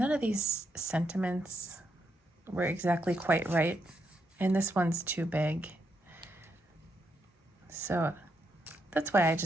of these sentiments were exactly quite right, and this one's too big. So that's why I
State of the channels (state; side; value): normal; both; correlation 0.80